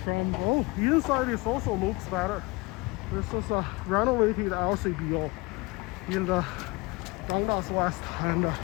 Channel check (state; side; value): quieter; right; 25.0 dB